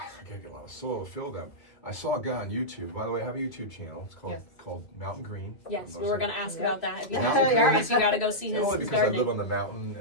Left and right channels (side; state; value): right; late; 2.2 ms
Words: I gotta get a lot of soil to fill them. I saw a guy on YouTube. By the way, I have a YouTube channel. It's called Mountain Green. Yes, I'm we were going to ask about that. If you Yeah. have curious, you got to go see his only because I gardening. live on the mountain